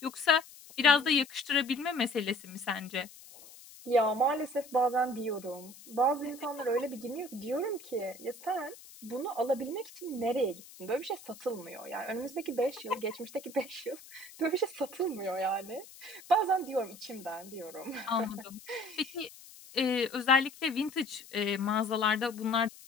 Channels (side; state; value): left; noise; hiss, 19 dB below the sound